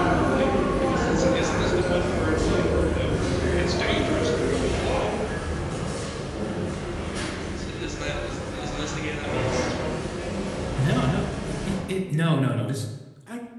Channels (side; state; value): both; identical; correlation 1.00